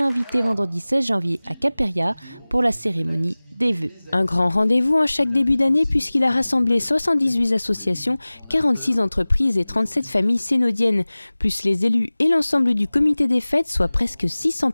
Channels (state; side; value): inverted; both; correlation -0.99